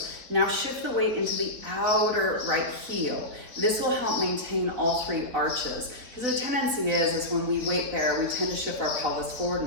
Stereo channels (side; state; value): left; late; 4.2 ms